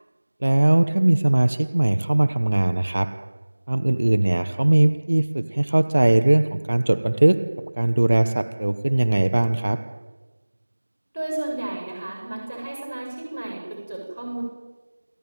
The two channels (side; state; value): both; inverted; correlation -1.00